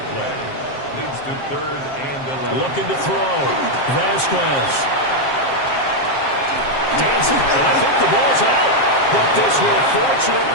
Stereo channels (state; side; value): late; right; 7.5 ms